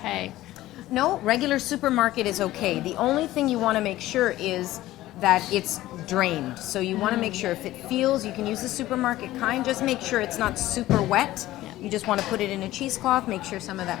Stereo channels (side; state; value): right; quieter; 15.8 dB